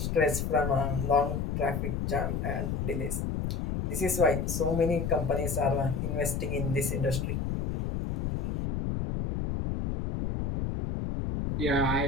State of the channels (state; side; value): noise; left; rumble, 1 dB below the sound